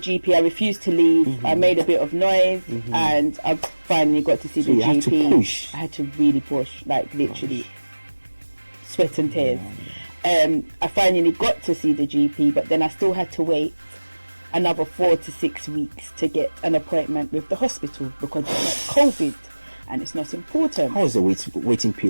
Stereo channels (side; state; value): both; inverted; correlation -1.00